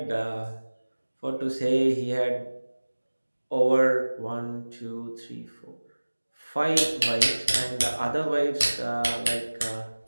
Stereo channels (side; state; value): both; inverted; correlation -1.00